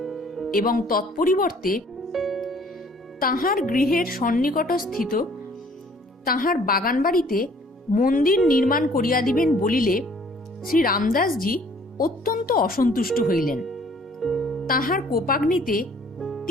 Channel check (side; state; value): both; normal; correlation 0.57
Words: এবং তৎপরিবর্তে তাহার গৃহের সন্নিকটস্থিত তাহার বাগান বাড়িতে মন্দির নির্মাণ করিয়া দিবেন বলিলে শ্রী রামদাসজি অত্যন্ত অসন্তুষ্ট হইলেন। তাহার কোপাগ্নিতে